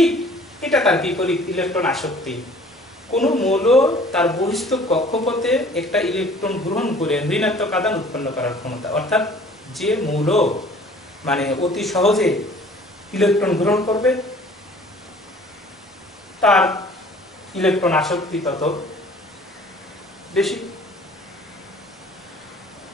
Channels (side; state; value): both; normal; correlation 0.51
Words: এটা তার বিপরীত ইলেকট্রন আসক্তি। কোন মৌল তার বহিস্থ কক্ষপথে একটা ইলেকট্রন গ্রহণ করে ঋণাত্মক আধান উৎপন্ন করার ক্ষমতা, অর্থাৎ যে মৌল মানে অতি সহজে ইলেকট্রন গ্রহণ করবে তার ইলেকট্রন আসক্তি তত বেশি।